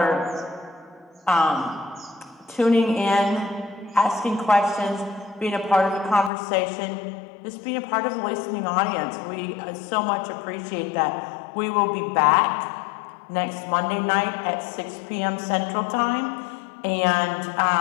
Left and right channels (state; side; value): drops out; right; at 6.3 s